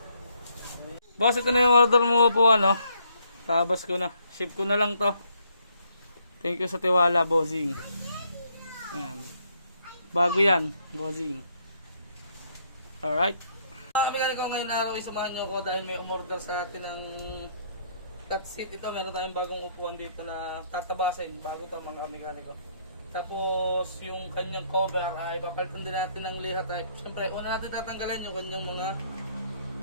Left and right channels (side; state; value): both; inverted; correlation -0.70